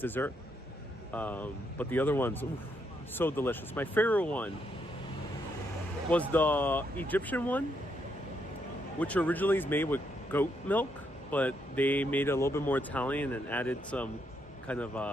But the other ones, oof, so delicious. My favorite one was the Egyptian one, which originally is made with goat milk, but they made it a little bit more Italian and added some kind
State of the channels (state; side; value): normal; both; correlation 0.77